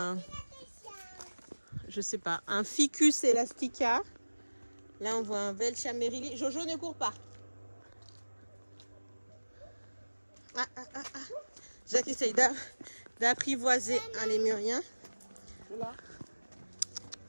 Je sais pas, un Ficus elastica. Là, on voit un Velchamerili. Jojo, ne cours pas. Jacques essaye d'apprivoiser un lémurien. C'est là.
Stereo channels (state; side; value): inverted; both; correlation -1.00